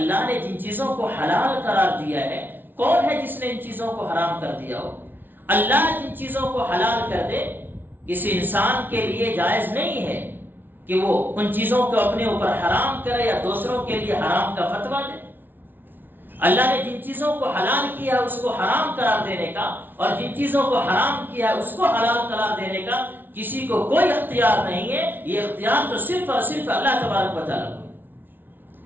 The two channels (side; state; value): left; late; 0.095 ms